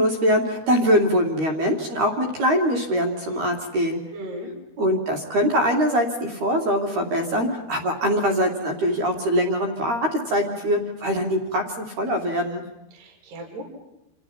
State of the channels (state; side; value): late; left; 13 ms